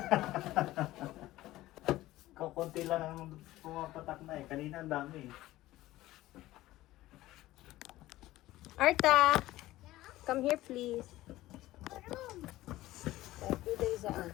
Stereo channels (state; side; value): quieter; right; 16.4 dB